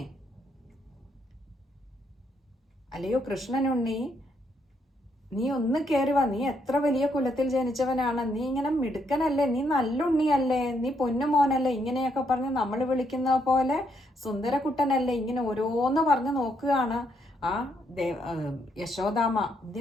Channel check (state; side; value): normal; both; correlation 0.75